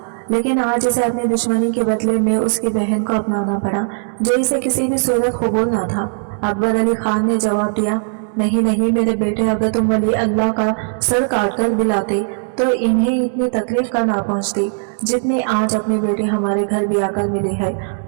लेकिन आज इसे अपनी दुश्मनी के बदले में उसकी बहन को अपनाना पड़ा, जो इसे किसी भी सूरत कबूल न था। अकबर अली खान ने जवाब दिया, नहीं नहीं मेरे बेटे, अगर तुम वली अल्लाह का सर काट कर दिलाते तो इन्हें इतनी तकलीफ का ना पहुंचती जितनी आज अपनी बेटी हमारे घर भी आकर मिली है।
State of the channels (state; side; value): silent; left; digital silence